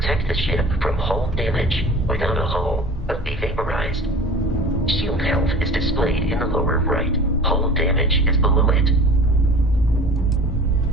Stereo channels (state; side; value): normal; both; correlation 0.41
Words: the ship from hull damage. Without a hull, be vaporized. Shield health is displayed in the lower right. Hull damage is below it.